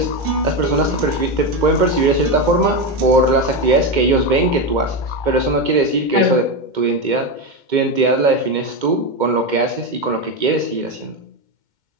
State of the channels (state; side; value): late; left; 2.1 ms